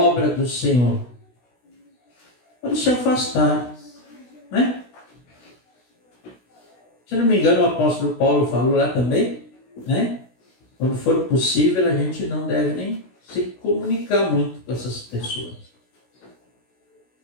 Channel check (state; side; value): late; right; 16 ms